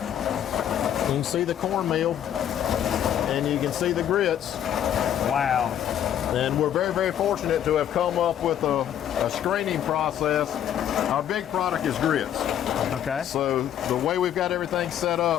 can see the cornmeal and you can see the grits. Wow. And we're very, very fortunate to have come up with a screening process. Our big product is grits. Okay. So the way we've got everything set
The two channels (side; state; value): right; quieter; 10.3 dB